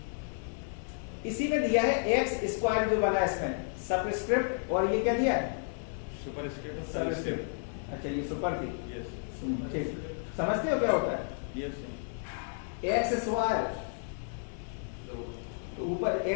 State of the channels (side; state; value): right; silent; 56 dB below the other